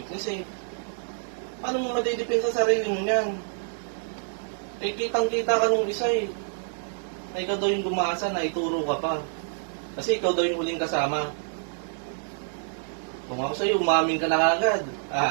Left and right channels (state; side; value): silent; left; digital silence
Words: eh. Paano mo madidipin sa sarili mo niyan? Eh, kitang-kita ka nung isa eh. Na ikaw daw yung gumasa, na ituro ka pa. Kasi ikaw daw yung huling kasama. Kung ako sa'yo, umamin ka na agad.